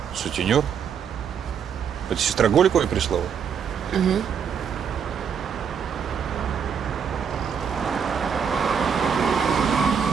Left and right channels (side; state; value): left; quieter; 7.2 dB